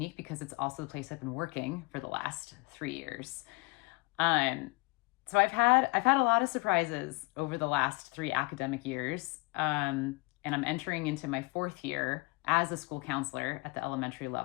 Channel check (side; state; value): right; quieter; 25.8 dB